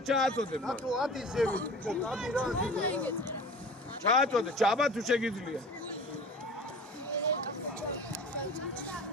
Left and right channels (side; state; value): both; normal; correlation 0.39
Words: ჩააწოდებ. დათუ ადი ზევი, ბიჭო, ადი რა. ჩააწოდე, ჩაბა თუ შეგიძლია.